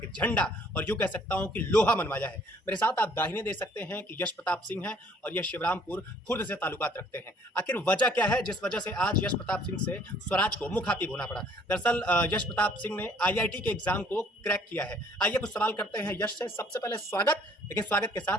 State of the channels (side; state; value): both; normal; correlation 0.59